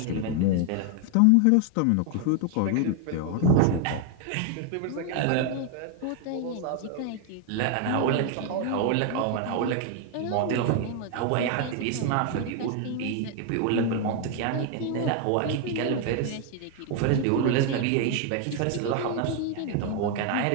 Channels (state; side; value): different; both; correlation 0.00